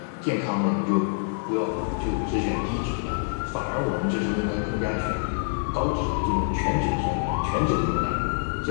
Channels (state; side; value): silent; right; digital silence